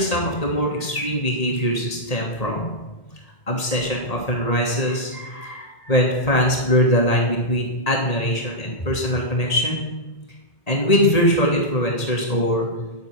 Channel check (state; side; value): late; right; 1.8 ms